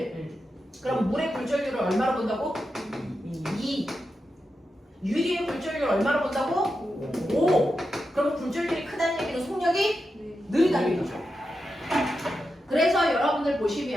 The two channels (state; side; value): normal; both; correlation 0.88